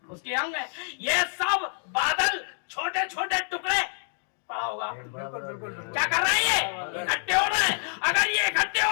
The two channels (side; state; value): right; silent; 60 dB below the other